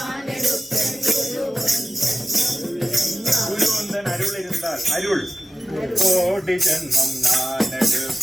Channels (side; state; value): both; normal; correlation 0.95